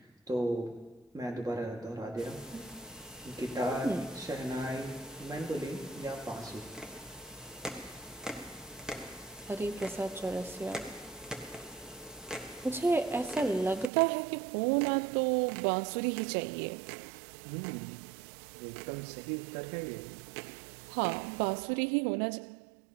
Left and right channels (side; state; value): left; drops out; at 13.9 s